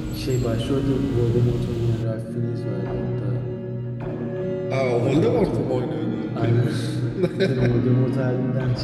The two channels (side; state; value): both; identical; correlation 1.00